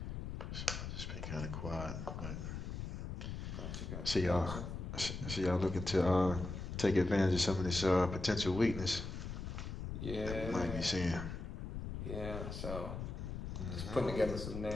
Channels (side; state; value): left; noise; rumble, 6 dB below the sound